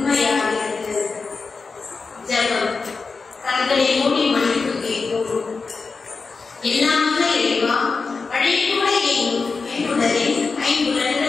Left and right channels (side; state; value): right; quieter; 4.5 dB